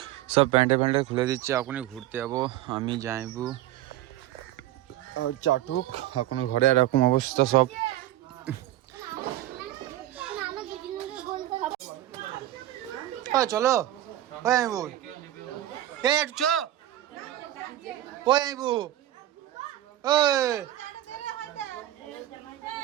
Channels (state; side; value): quieter; left; 13.9 dB